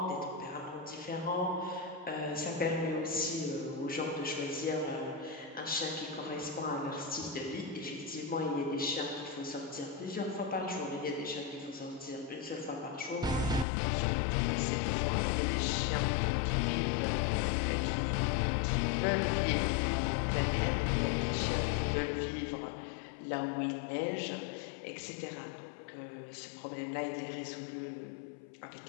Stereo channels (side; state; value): right; drops out; at 13.7 s